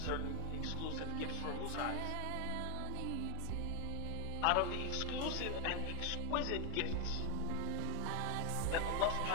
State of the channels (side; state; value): both; different; correlation 0.01